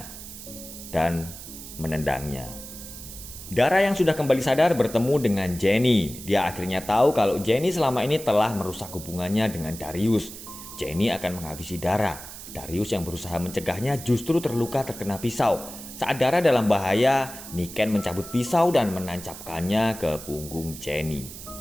dan menendangnya. Dara yang sudah kembali sadar bertemu dengan Jenny. Dia akhirnya tahu kalau Jenny selama ini telah merusak hubungannya dengan Darius. Jenny akan menghabisi Dara. Darius yang berusaha mencegahnya justru terluka terkena pisau. Saat Dara dalam bahaya, Niken mencabut pisau dan menancapkannya ke punggung Jenny.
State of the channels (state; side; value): noise; right; hiss, 13 dB below the sound